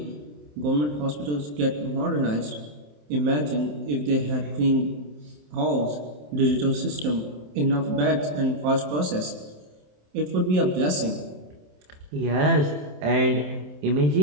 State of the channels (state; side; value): late; left; 27 ms